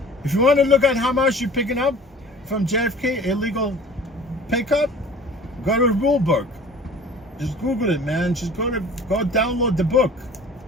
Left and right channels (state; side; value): normal; both; correlation 0.45